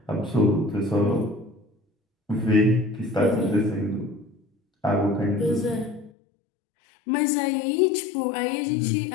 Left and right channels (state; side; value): drops out; right; at 6.1 s